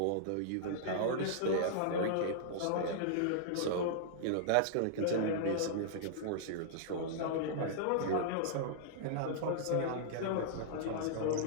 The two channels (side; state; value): both; different; correlation -0.01